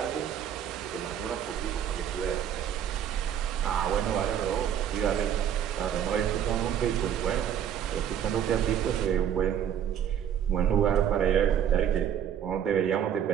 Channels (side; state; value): left; quieter; 9.4 dB